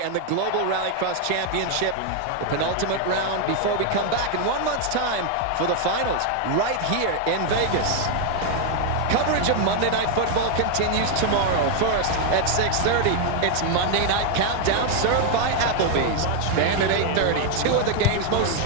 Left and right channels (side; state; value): both; different; correlation 0.01